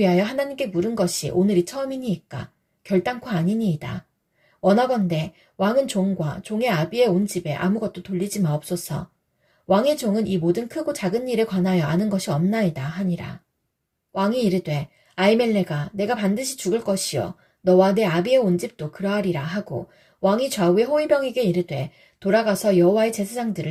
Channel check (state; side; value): identical; both; correlation 1.00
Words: 하나님께 물은 것이 오늘이 처음이니이까 결단코 아니니이다. 원하건대 왕은 종과 종의 아비의 온 집에 아무것도 돌리지 마옵소서. 왕의 종은 이 모든 크고 작은 일에 관하여 아는 것이 없나이다 하니라. 왕이 이르되 아히멜렉아 내가 반드시 죽을 것이요 너와 내 아비의 온 집도 그러하리라 하고 왕이 좌우의 호위병에게 이르되 돌아가서 여호와의